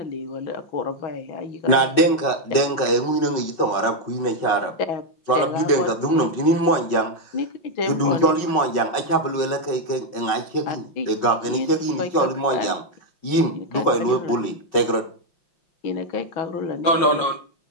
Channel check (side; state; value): right; late; 5.4 ms